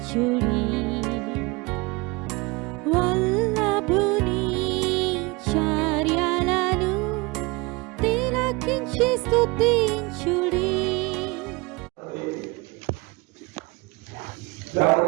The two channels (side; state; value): left; quieter; 25.7 dB